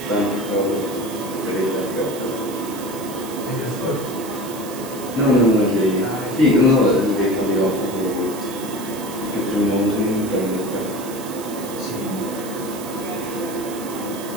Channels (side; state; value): right; noise; hiss, 14 dB below the sound